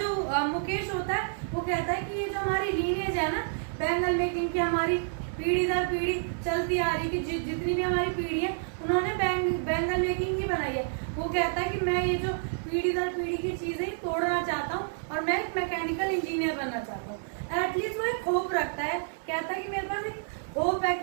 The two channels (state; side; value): silent; left; digital silence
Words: मुकेश होता है वो कहता है कि ये जो हमारी लीनेज है ना बैंगल मेकिंग की, हमारी पीढ़ी दर पीढ़ी चलती आ रही, कि जितनी भी हमारी पीढ़ी है उन्होंने बैंगल मेकिंग ही बनाई है। वो कहता है कि मैं ये जो पीढ़ी दर पीढ़ी की चीजें तोड़ना चाहता हूँ और मैं एक मैकेनिकल इंजीनियर बनना चाहता हूँ। एटलीस्ट वो एक होप रखता है, कहता है कि मेरे पास एक होप है